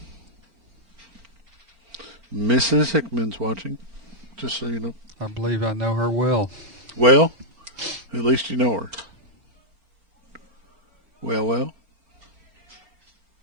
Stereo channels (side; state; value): left; late; 4.4 ms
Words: Mrs. Hickman's watching, just so you know. Well, at least you know her. Well.